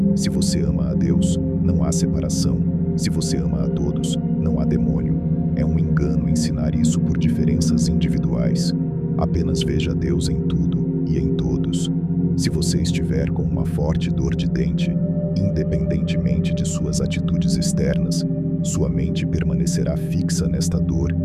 Se você ama a Deus, não há separação. Se você ama a todos, não há demônio. É um engano ensinar isso por diferenças individuais. Apenas veja Deus em tudo e em todos. Se você estiver com uma forte dor de dente, independentemente de suas atitudes externas, sua mente permanecerá fixa nesta dor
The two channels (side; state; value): both; identical; correlation 1.00